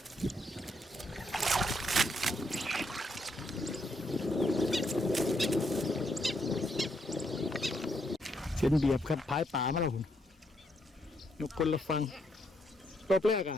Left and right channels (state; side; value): normal; both; correlation 0.76